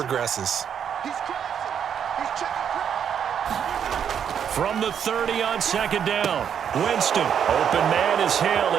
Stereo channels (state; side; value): quieter; left; 8.3 dB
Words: From the 30 on second down. Winston. Open man is